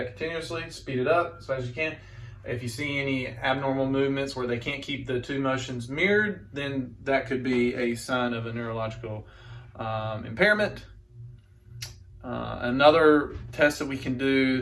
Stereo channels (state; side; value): identical; both; correlation 1.00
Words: continuously, speed it up as fast as you can. If you see any abnormal movements where they can't keep the two motions mirrored, then that could be a sign of a neurological impairment. Another test that we can